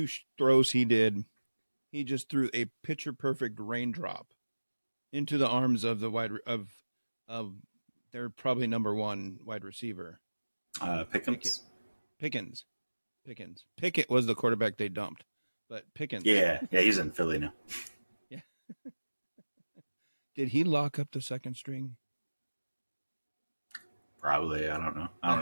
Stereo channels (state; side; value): inverted; both; correlation -1.00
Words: throws he did, he just threw a picture perfect raindrop into the arms of the of their probably number one wide receiver. Pickens? Pickens. Pickett was the quarterback they dumped, but Pickens. Yeah, he's in Philly now. Yeah. Did he lock up the second string? Probably. I don't know. I